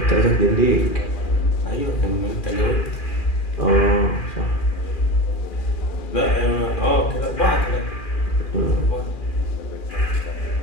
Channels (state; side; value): late; right; 2.4 ms